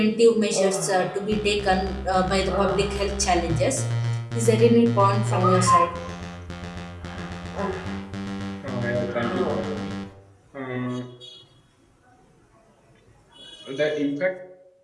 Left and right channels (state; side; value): identical; both; correlation 1.00